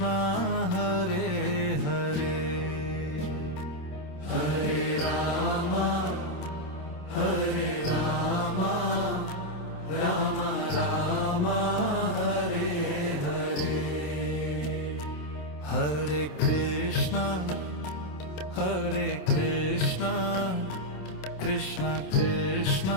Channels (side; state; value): right; late; 27 ms